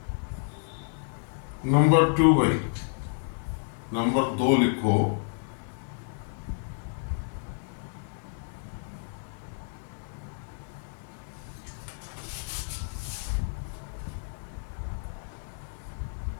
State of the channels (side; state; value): right; silent; digital silence